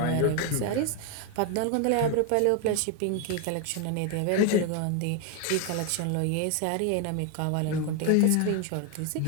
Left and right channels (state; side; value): different; both; correlation 0.01